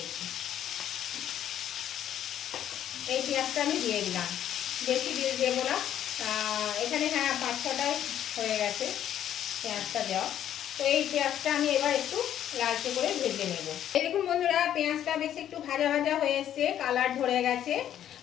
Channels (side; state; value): right; quieter; 10.8 dB